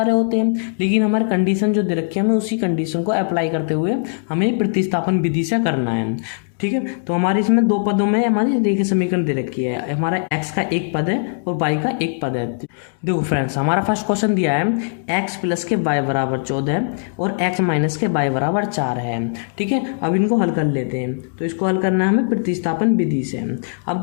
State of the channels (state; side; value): silent; right; digital silence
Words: होते हैं, लेकिन हमारे कंडीशन जो दे रखी है हमें उसी कंडीशन को अप्लाई करते हुए हमें प्रतिस्थापन विधि से करना है। ठीक है, तो हमारे इसमें दो पदों में हमारी रेखीय समीकरण दे रखी है। हमारा x का एक पद है और y का एक पद है। देखो फ्रेंड्स, हमारा फर्स्ट क्वेश्चन दिया है x प्लस के y बराबर 14 और x माइनस के y बराबर 4 है। ठीक है, अब इनको हल कर लेते हैं। तो इसको हल करना है हमें प्रतिस्थापन विधि से। अब